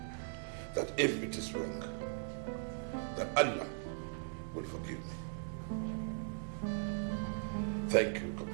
that if it is wrong, that Allah will forgive me. Thank you,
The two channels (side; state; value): left; silent; digital silence